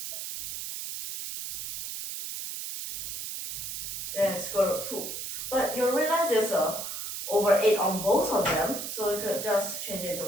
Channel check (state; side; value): noise; right; hiss, 6 dB below the sound